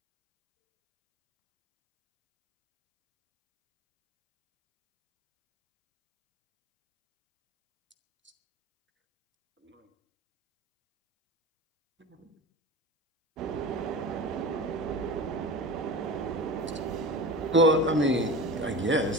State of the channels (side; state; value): both; normal; correlation 0.33